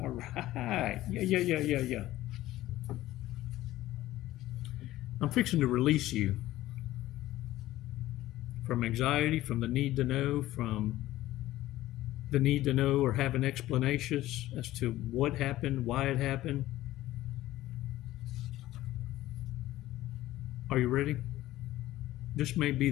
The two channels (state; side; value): quieter; right; 15.5 dB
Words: right. Yeah. I'm fixing to release you from anxiety, from the need to know, from the need to know or have an explanation as to what happened, why it happened. Are you ready? This may be